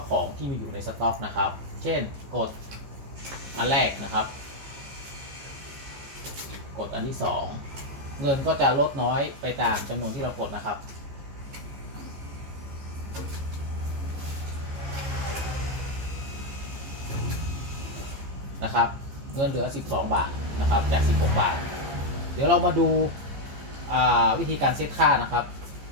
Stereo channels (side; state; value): left; late; 15 ms